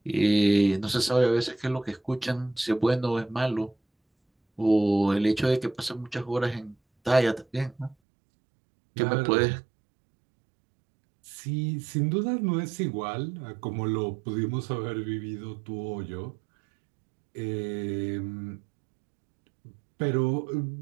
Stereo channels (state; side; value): drops out; left; at 8.0 s